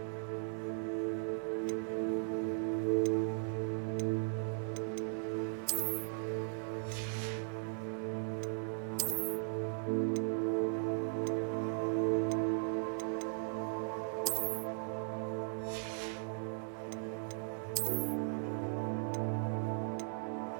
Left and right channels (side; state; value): left; silent; digital silence